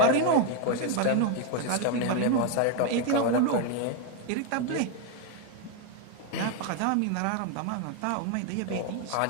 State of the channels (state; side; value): different; both; correlation 0.01